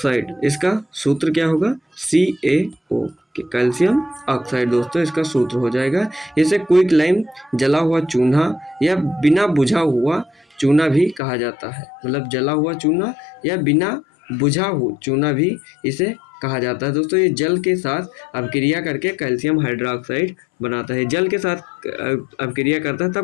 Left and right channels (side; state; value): right; drops out; at 11.2 s